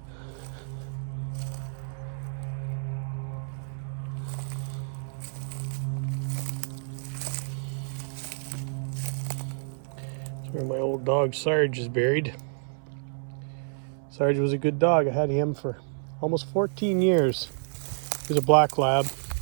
That's where my old dog Sarge is buried. Sarge was a good dog. I had him for almost 14 years. He was a black lab.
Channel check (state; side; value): silent; left; 59 dB below the other